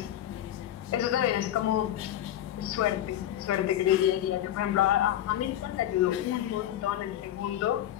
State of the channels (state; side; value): quieter; right; 12.1 dB